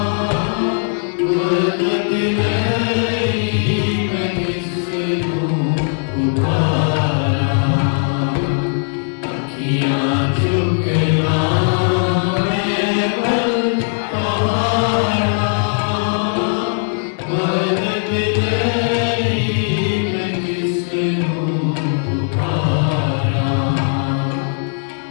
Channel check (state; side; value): silent; right; 63 dB below the other